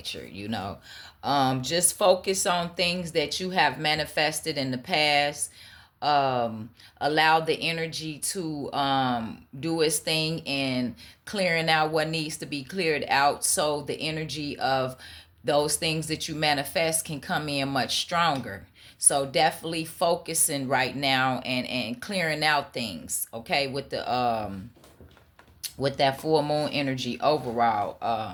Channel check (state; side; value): identical; both; correlation 1.00